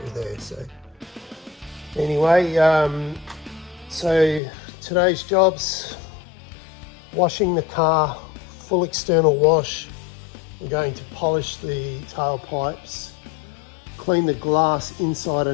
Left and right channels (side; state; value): right; drops out; at 4.4 s